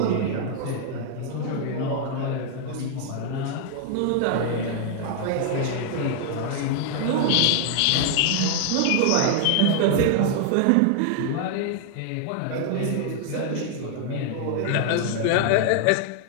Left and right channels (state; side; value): different; both; correlation 0.00